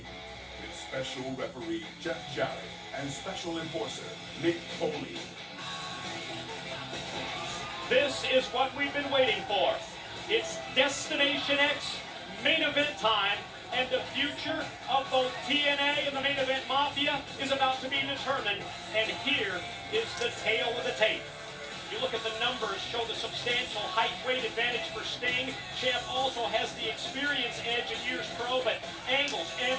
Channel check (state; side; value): identical; both; correlation 1.00